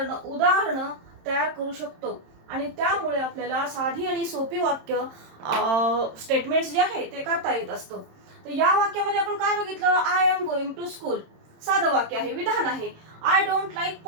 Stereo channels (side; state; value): left; late; 26 ms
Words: तयार करू शकतो आणि त्यामुळे आपल्याला साधी आणि सोपी वाक्य स्टेटमेंट्स जे आहे ते करता येत असतं. तर या वाक्यामध्ये आपण काय बघितलं, I am going to school साधं वाक्य आहे, विधान आहे. आय डोंट लाईक